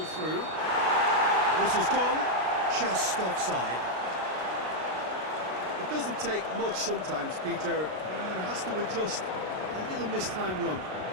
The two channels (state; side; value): late; left; 33 ms